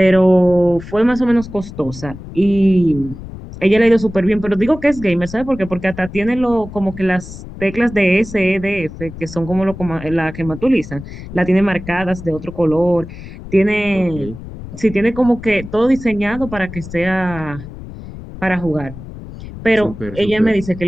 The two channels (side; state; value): left; noise; rumble, 13 dB below the sound